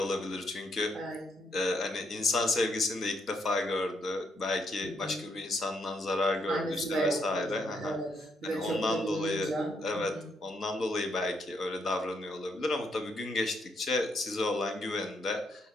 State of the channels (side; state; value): both; normal; correlation 0.76